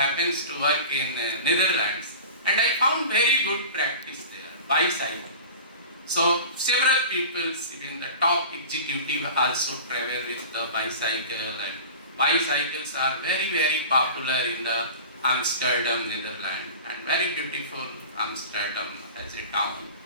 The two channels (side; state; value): both; inverted; correlation -0.36